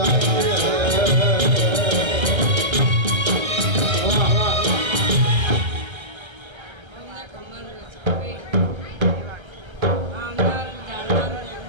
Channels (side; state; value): left; late; 1.3 ms